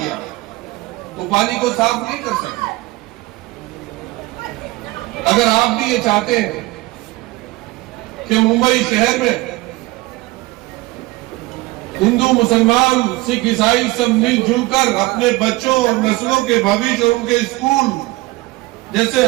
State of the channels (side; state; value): left; quieter; 20.4 dB